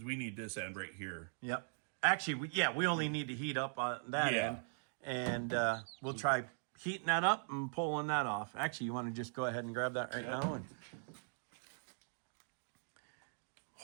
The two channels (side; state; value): left; silent; digital silence